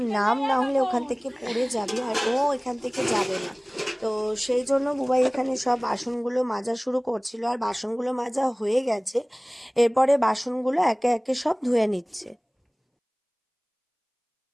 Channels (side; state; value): both; identical; correlation 1.00